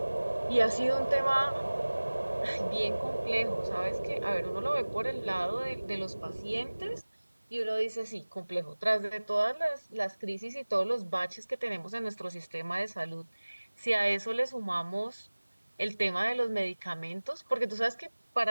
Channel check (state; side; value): inverted; both; correlation -1.00